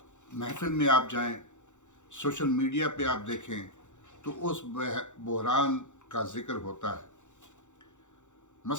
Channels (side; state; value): right; late; 0.85 ms